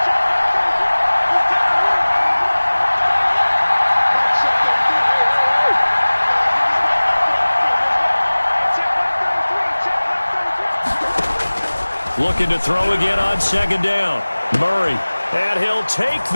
Looking to throw again on second down. Murray. And he'll take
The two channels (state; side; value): inverted; both; correlation -1.00